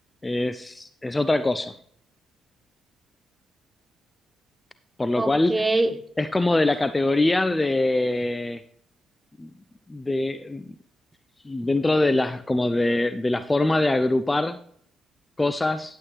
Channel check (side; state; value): both; normal; correlation 0.96